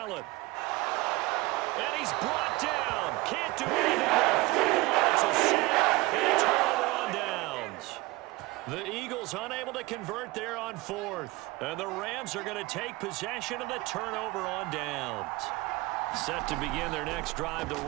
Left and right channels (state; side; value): quieter; left; 21.3 dB